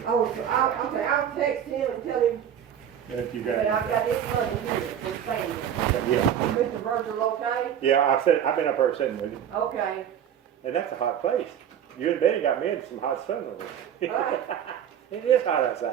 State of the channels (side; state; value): left; quieter; 9.3 dB